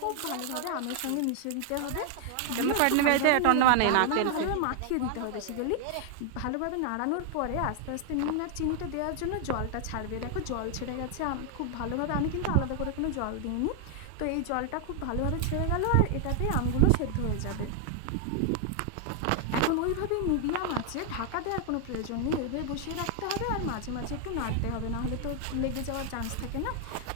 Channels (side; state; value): both; different; correlation 0.00